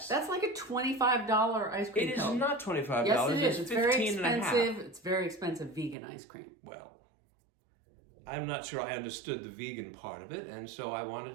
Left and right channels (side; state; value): left; drops out; at 6.0 s